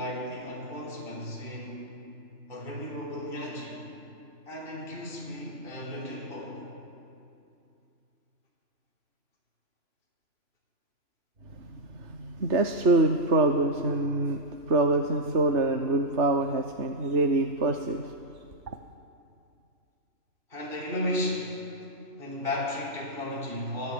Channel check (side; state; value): left; late; 3.0 ms